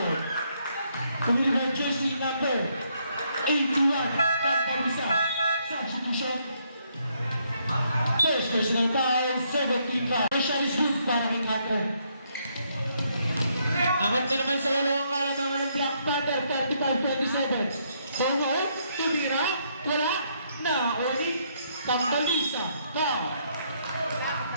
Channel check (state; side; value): inverted; both; correlation -0.73